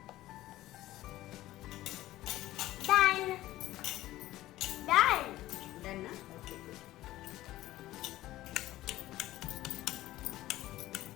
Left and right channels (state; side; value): quieter; right; 15.7 dB